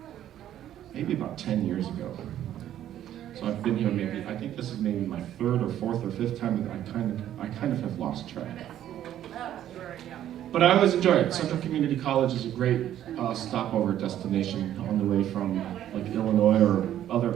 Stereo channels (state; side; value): quieter; left; 11.6 dB